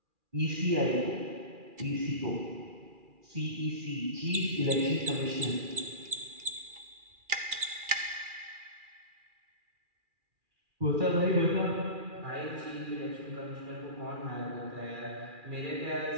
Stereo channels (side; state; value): left; late; 2.4 ms